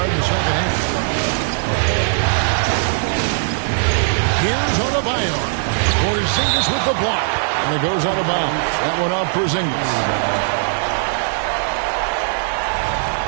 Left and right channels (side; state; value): left; silent; 67 dB below the other